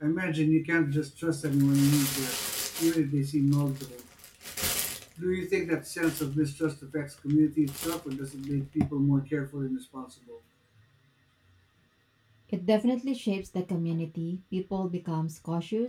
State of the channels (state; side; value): identical; both; correlation 1.00